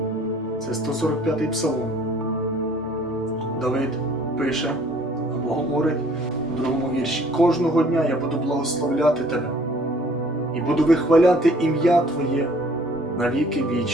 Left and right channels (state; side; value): normal; both; correlation 0.56